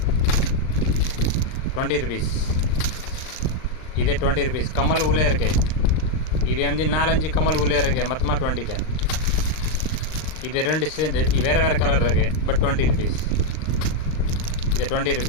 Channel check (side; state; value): right; late; 39 ms